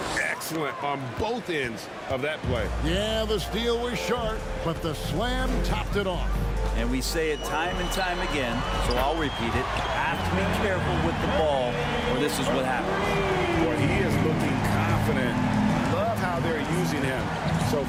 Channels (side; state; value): both; identical; correlation 1.00